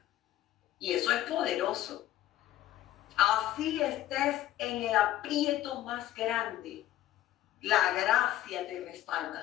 Y eso es poderoso. Así estés en el aprieto más grande, la gracia te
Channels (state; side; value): quieter; right; 13.8 dB